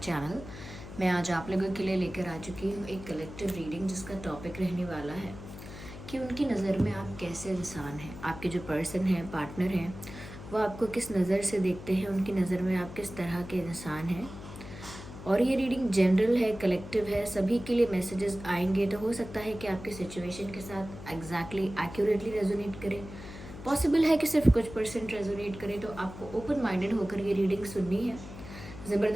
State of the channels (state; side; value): noise; left; hum, 13 dB below the sound